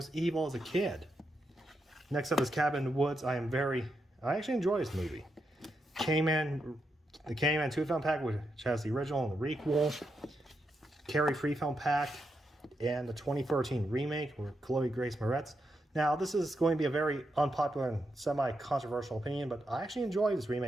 evil as a kid. Next up is Cabin in the Woods. I actually enjoy this movie. The Candyman 2-film pack, which has the original and the requel. Carrie 3-film pack, and the 2013 remake with Chloe Grace Moretz. Now, this is going to be a very unpopular and semi-controversial opinion, but I actually enjoy this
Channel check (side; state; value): both; normal; correlation 0.84